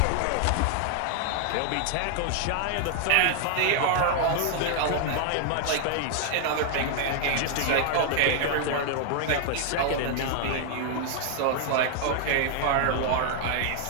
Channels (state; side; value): different; both; correlation 0.00